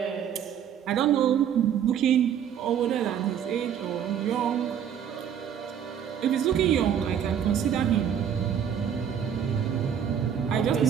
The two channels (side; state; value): left; quieter; 8.8 dB